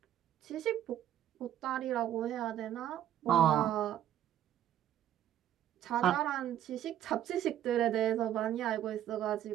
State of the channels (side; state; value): left; quieter; 11.5 dB